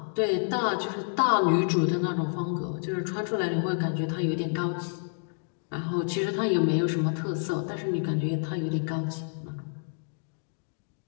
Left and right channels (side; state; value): right; silent; digital silence